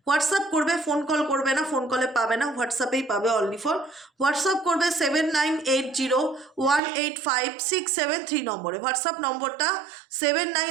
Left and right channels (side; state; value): left; drops out; at 6.8 s